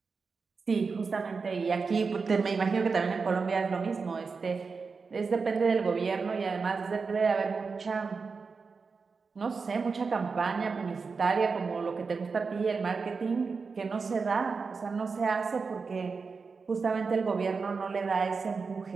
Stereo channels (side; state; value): left; quieter; 4.8 dB